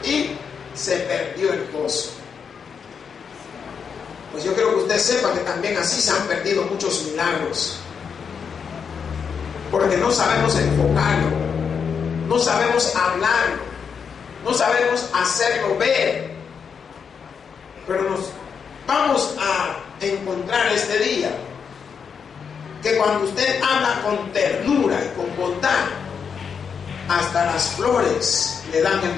y se perdió el gozo. Pues yo quiero que usted sepa que también así se han perdido muchos milagros, porque no sabemos enfocarlo, no sabemos hablarlo, no sabemos hacerlo ver. Pero nos vamos a encontrar este día que cuando usted habla con ternura y con bondad, hasta las flores le dan el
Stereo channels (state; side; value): quieter; right; 6.5 dB